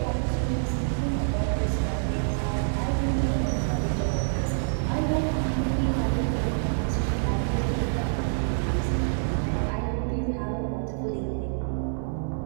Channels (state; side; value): silent; left; 60 dB below the other